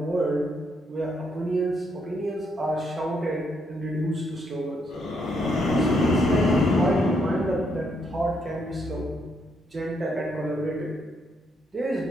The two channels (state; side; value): normal; both; correlation 0.75